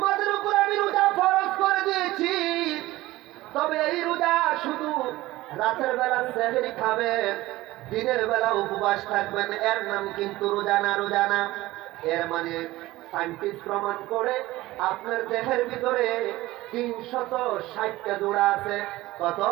উপর আমি রোজা ফরজ করে দিয়েছি, তবে এই রোজা শুধু রাতের বেলা সেহরি খাবেন, দিনের বেলা উপবাস থাকবেন, এর নাম কিন্তু রোজা না। রোজা না, এর মানে সায়েন্টিস্ট প্রমাণ করে আপনার দেহের ভিতরে 360টা জোড়া আছে। কত?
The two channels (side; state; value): left; quieter; 17.9 dB